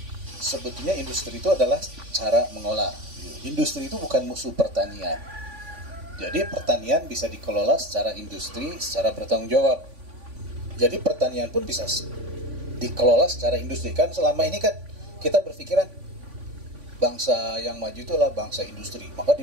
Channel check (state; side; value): late; left; 3.5 ms